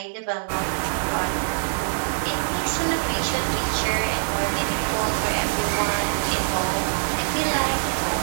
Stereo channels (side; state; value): left; silent; digital silence